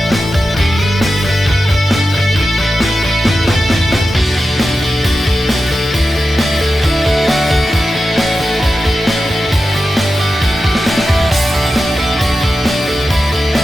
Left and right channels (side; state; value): both; normal; correlation 0.92